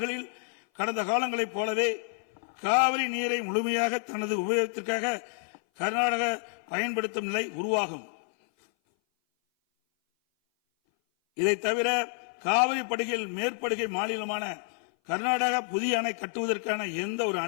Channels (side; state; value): right; silent; 57 dB below the other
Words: கடந்த காலங்களைப் போலவே காவிரி நீரை முழுமையாக தனது உபயோகத்திற்காக கர்நாடக பயன்படுத்தும் நிலை உருவாகும். இதை தவிர காவிரி படுகையில் மேற்படுகை மாநிலமான கர்நாடகா புதிய அணை கட்டுவதற்கான எந்த ஒரு